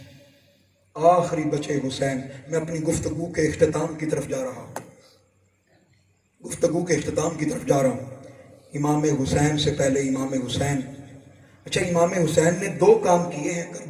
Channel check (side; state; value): both; identical; correlation 1.00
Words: آخری بچے حسین. میں اپنی گفتگو کے اختتام کی طرف جا رہا ہوں، گفتگو کے اختتام کی طرف جا رہا ہوں. امام حسین سے پہلے امام حسین، اچھا امام حسین نے 2 کام کیے ہیں